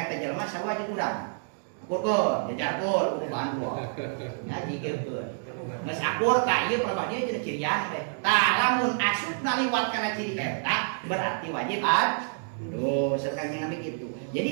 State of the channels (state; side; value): silent; left; digital silence